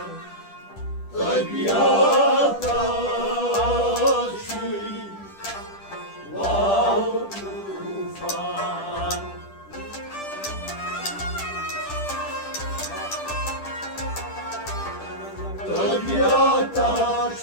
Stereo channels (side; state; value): right; late; 10 ms